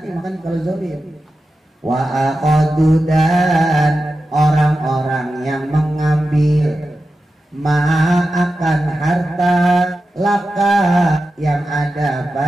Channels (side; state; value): both; normal; correlation 0.92